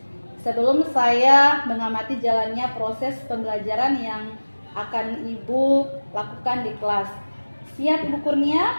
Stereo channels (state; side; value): inverted; both; correlation -1.00